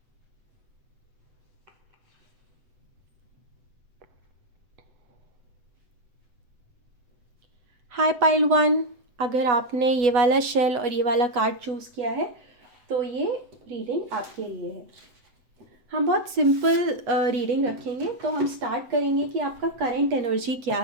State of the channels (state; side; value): late; left; 7.9 ms